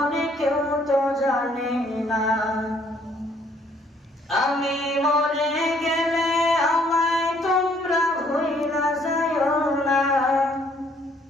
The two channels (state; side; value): normal; both; correlation 0.64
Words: কেউ তো জানে না। আমি মরে গেলে আমায় তোমরা ভুইলা যাইও না।